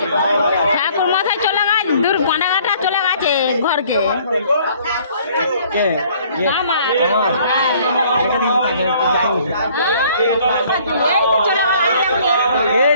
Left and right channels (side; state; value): both; inverted; correlation -0.58